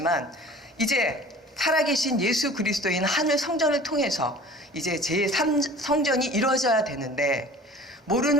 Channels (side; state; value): both; normal; correlation 0.44